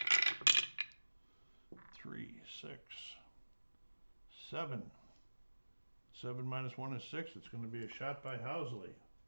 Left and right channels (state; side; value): inverted; both; correlation -1.00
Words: 3, 6, 7. 7 minus 1 is 6. It's going to be a shot by Housley.